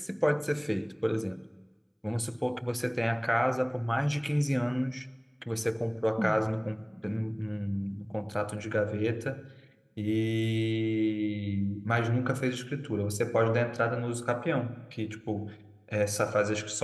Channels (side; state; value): both; identical; correlation 1.00